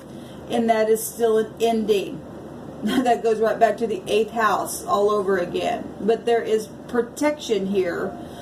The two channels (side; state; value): both; identical; correlation 1.00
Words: and that is still an ending. That goes right back to the 8th house all over again. But there is protection here.